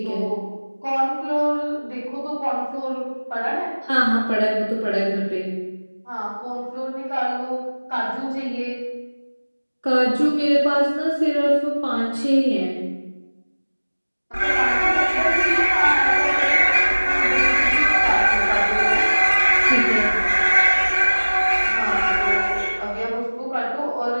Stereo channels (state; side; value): inverted; both; correlation -1.00